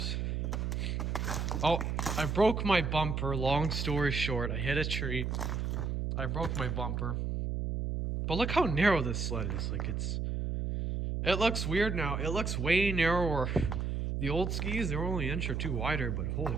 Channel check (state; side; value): noise; right; hum, 1 dB below the sound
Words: Oh, I broke my bumper. Long story short, I hit a tree. I broke my bumper. But look how narrow this sled is. Like it looks weird now. It looks way narrower. The old skis, they're only an inch or two wider, but holy